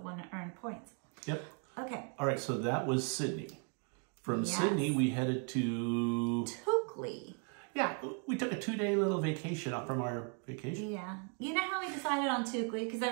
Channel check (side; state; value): left; quieter; 39.1 dB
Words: to earn points. Yep. Okay. All right, so that was Sydney. From Sydney, we headed to... Toukley. Yeah, we took a 2-day little vacation off from our vacation. Yeah. You know how we decided on Toukley? Because